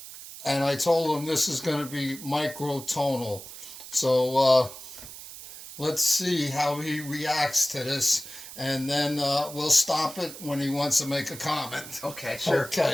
and I told him this is going to be microtonal. So let's see how he reacts to this, and then we'll stop it when he wants to make a comment. Okay, sure.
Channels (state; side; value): noise; right; hiss, 14 dB below the sound